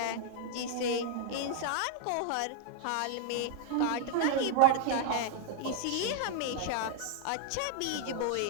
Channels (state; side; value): different; both; correlation 0.00